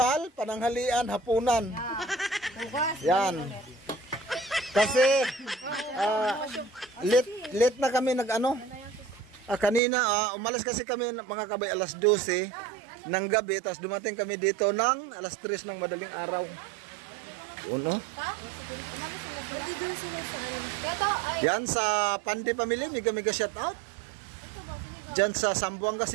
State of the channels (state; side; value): drops out; left; at 9.8 s